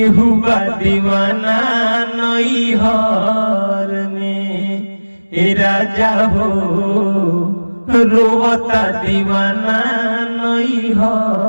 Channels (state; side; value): inverted; both; correlation -1.00